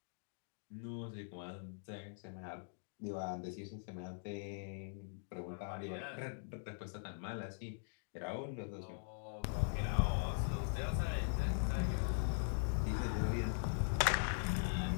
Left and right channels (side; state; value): right; silent; digital silence